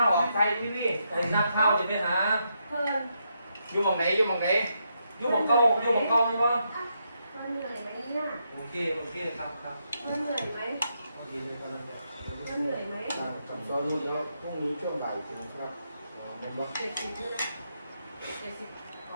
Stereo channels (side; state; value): both; inverted; correlation -0.81